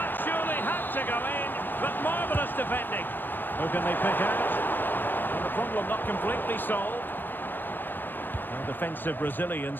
surely had to go in, but marvellous defending. Who can they pick out? And the problem not completely solved. And defensive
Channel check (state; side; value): late; right; 0.093 ms